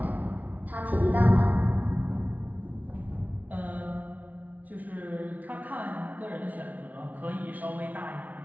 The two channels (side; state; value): left; late; 0.074 ms